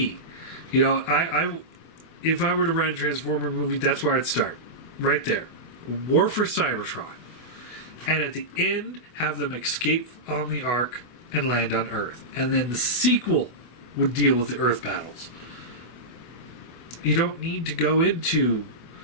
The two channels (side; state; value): right; late; 24 ms